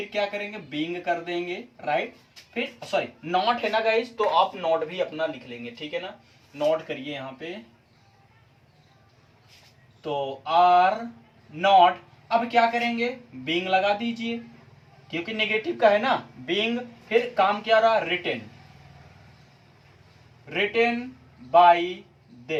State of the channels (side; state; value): both; identical; correlation 1.00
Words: क्या करेंगे, बीइंग कर देंगे, राइट। फिर सॉरी नॉट है ना गाइस, तो आप नॉट भी अपना लिख लेंगे, ठीक है ना। नॉट करिए यहाँ पे, तो आर नॉट। अब क्या करेंगे, बीइंग लगा दीजिए, क्योंकि नेगेटिव का है ना, बीइंग। फिर काम क्या रहा, written, written by